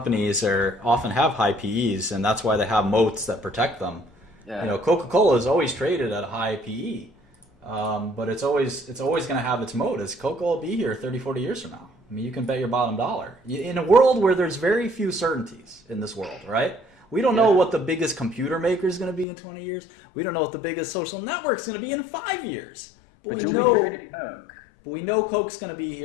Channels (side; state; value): right; drops out; at 19.2 s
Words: often have high PEs, and that's why they have moats that protect them. Yeah. You know, Coca-Cola is always traded at a high PE, but it's always going to have its moat. Is Coca-Cola will be here 30, 40 years from now? I mean, you can bet your bottom dollar. In a world where there's very few certainties in this world, right? We don't know what the biggest computer maker is going to be in 20 years. We don't know what the biggest social network is going to be in 5 years. But we know Coke's going to be